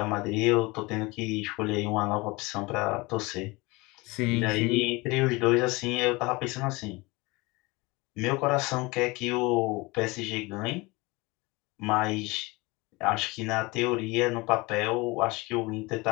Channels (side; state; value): right; quieter; 24.1 dB